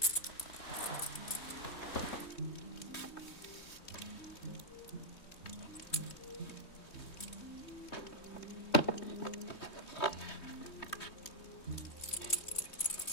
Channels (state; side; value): late; right; 3.2 ms